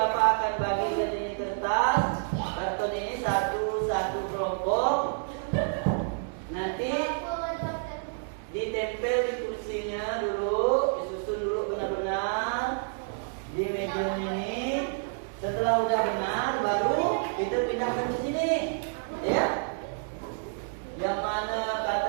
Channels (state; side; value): silent; left; digital silence